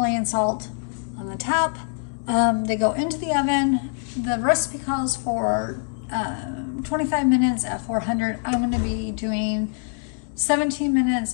salt on the top. They go into the oven. The recipe calls for 25 minutes at 400. I'm going to be doing 17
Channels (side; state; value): right; silent; 56 dB below the other